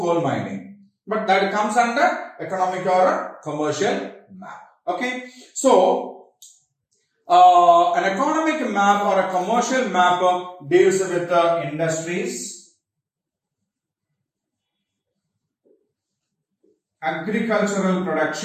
mining. But that comes under economic or a commercial map. Okay, so an economic map or a commercial map deals with industries, agricultural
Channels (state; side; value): identical; both; correlation 1.00